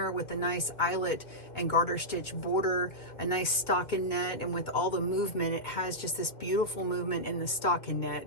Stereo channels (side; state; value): right; late; 2.1 ms